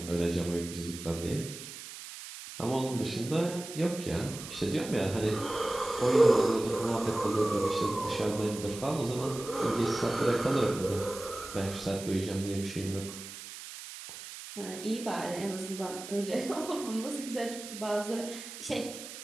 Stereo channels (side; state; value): right; noise; hiss, 12 dB below the sound